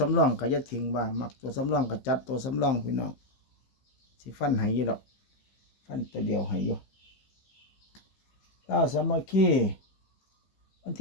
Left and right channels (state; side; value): late; right; 15 ms